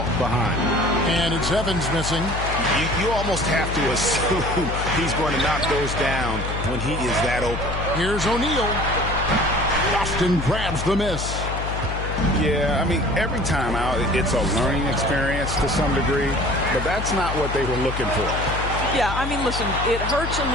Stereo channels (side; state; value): left; noise; hum, 5 dB below the sound